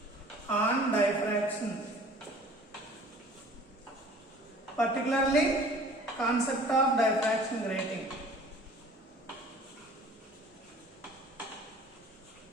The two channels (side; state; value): both; normal; correlation 0.48